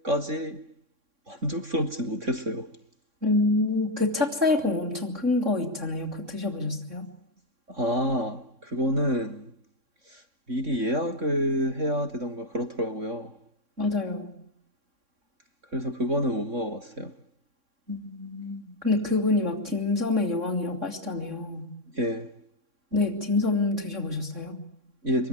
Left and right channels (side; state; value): left; late; 3.6 ms